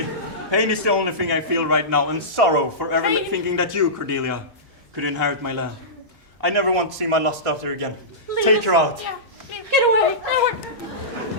Pain is the only thing I feel right now, and sorrow for ever Pain. thinking that you, Cordelia, could inherit my land. I never want to see my lost daughter again. Leave Take us. her out. Yeah. Get away.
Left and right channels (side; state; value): both; normal; correlation -0.19